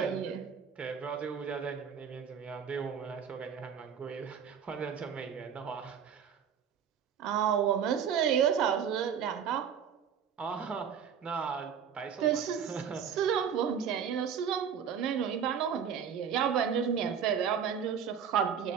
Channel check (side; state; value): left; quieter; 7.7 dB